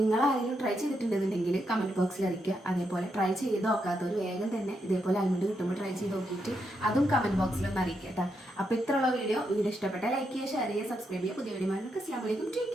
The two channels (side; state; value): both; normal; correlation 0.81